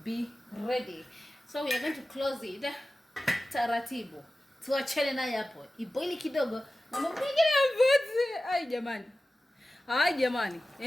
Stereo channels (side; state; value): both; normal; correlation 0.95